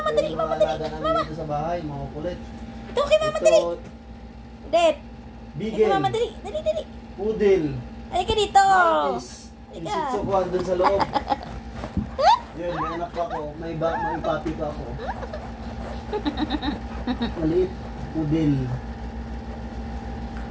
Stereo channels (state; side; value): identical; both; correlation 1.00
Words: dali, mama, dali. Mama. Dito sa bahay, mga kulit. Ito kay mama, dali. Det. Bigel. Kay mama, dali. Dali, dali. Pudel. Halika dito. Martis. Halika. Isitsukuan doon sa loob. Yun, may anak pa ako. May papi pa ako. Maliit. Pudel.